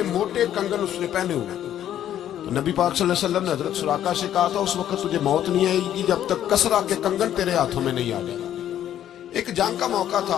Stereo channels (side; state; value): right; quieter; 11.1 dB